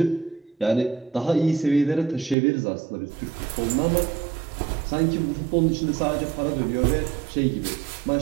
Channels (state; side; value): drops out; left; at 2.4 s